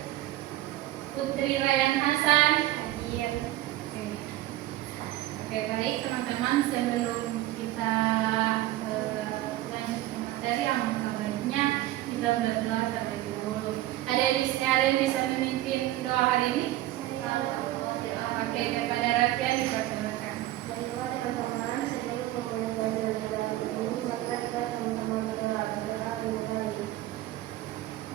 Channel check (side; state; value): left; quieter; 15.5 dB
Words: Putri Rayhan Hasan. Oke, baik teman-teman, sebelum kita lanjut ke materi, yang baiknya kita berdoa terlebih dahulu. Ada yang bisa memimpin doa hari ini? Oke, kepada Rafia dipersilakan.